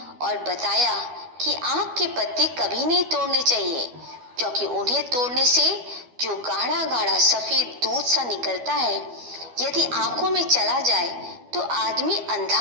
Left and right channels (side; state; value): left; late; 12 ms